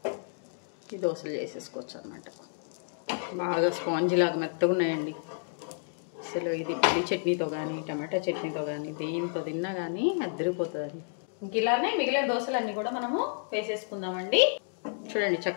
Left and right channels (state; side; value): silent; right; digital silence